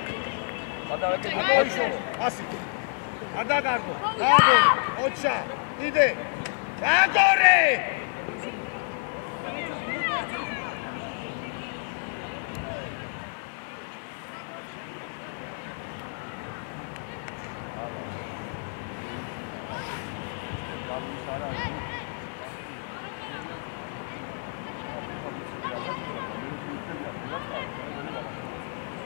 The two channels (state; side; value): silent; right; 56 dB below the other